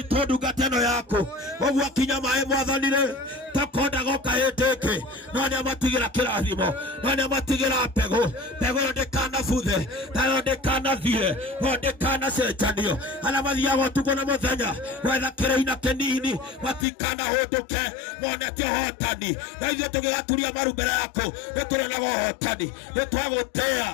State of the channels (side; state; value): right; drops out; at 16.9 s